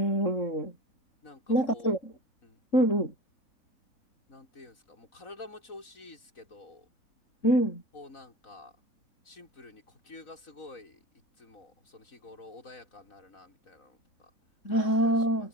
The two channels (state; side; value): late; right; 4.0 ms